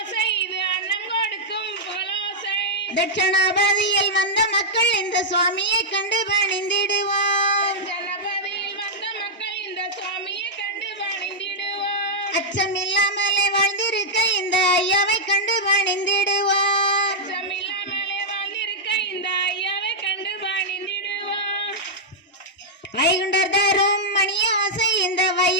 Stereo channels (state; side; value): normal; both; correlation -0.07